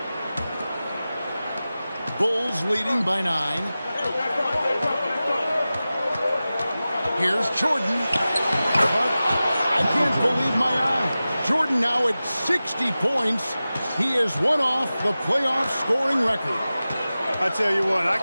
Bulls leading by 9. Here's Jordan. But I can't believe my eye. Jordan now at 60 points. He is one off the playoff scoring record. I tell you what, I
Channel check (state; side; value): inverted; both; correlation -0.96